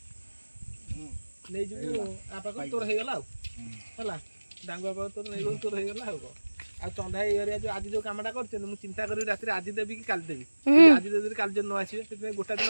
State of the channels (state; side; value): inverted; both; correlation -1.00